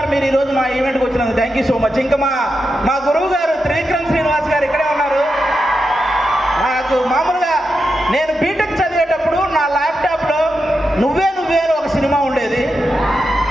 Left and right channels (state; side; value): normal; both; correlation 0.87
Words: మీరు ఈరోజు మా ఈవెంట్కి వచ్చినందుకు థ్యాంక్ యూ సో మచ్. ఇంకా మా గురువు గారు త్రివిక్రమ్ శ్రీనివాస్ గారు ఇక్కడే ఉన్నారు. నాకు మామూలుగా నేను బీటెక్ చదివేటప్పుడు నా ల్యాప్టాప్లో నువ్వే ఒక సినిమా ఉండేది.